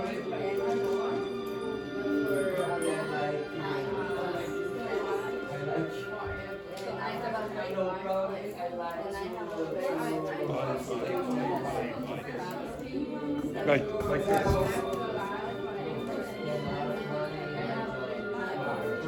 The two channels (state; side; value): identical; both; correlation 1.00